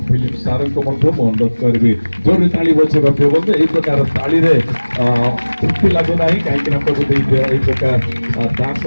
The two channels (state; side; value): inverted; both; correlation -1.00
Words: फिलिप सार को अनुरोध करी जोर ताली बजे प्रिय बंधु यही प्रकार ताली तृप्ति लगुना कहीं प्रभु यही प्रकार दास